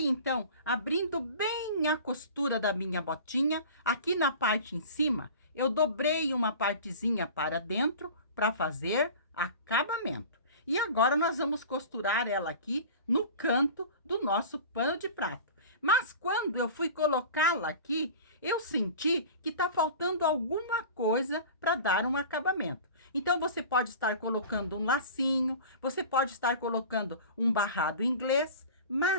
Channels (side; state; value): both; inverted; correlation -0.38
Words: então abrindo bem a costura da minha botinha. Aqui na parte em cima, eu dobrei uma partezinha para dentro para fazer acabamento. E agora, nós vamos costurar ela aqui no canto do nosso pano de prato. Mas quando eu fui colocá-la aqui, eu senti que tá faltando alguma coisa para dar um acabamento. Então, você pode estar colocando um lacinho, você pode estar colocando um barrado inglês,